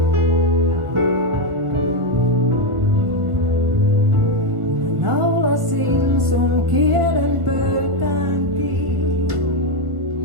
Naulasin sun kielen pöytäänkin,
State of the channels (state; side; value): late; left; 1.6 ms